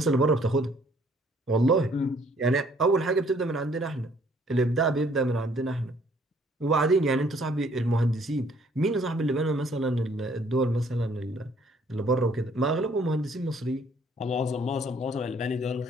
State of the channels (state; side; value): normal; both; correlation 0.62